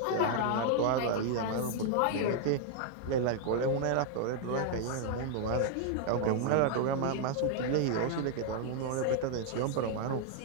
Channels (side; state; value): both; different; correlation 0.00